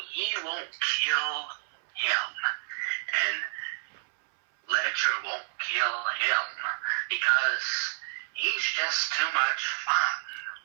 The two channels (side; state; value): left; silent; 58 dB below the other